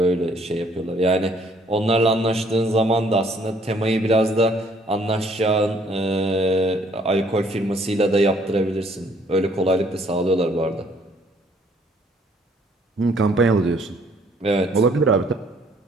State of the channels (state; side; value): normal; both; correlation 0.63